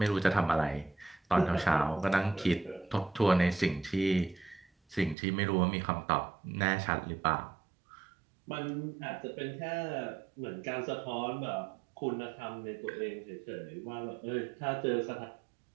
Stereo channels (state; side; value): drops out; left; at 5.2 s